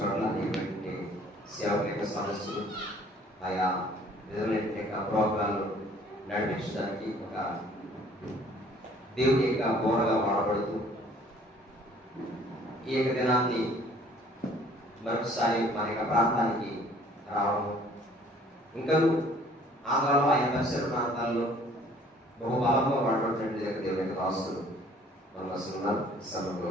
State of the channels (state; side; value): normal; both; correlation 0.56